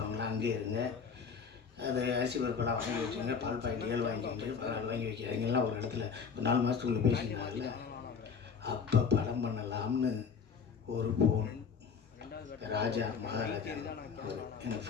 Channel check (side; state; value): right; quieter; 6.1 dB